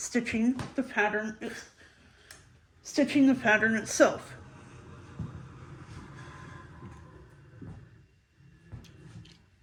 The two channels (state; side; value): identical; both; correlation 1.00